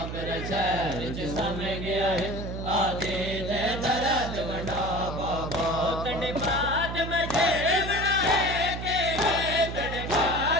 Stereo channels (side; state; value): right; noise; hum, 6 dB below the sound